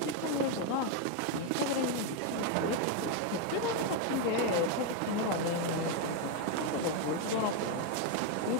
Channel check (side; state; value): both; different; correlation 0.02